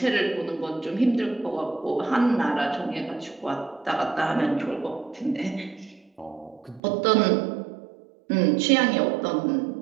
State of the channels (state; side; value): drops out; left; at 6.8 s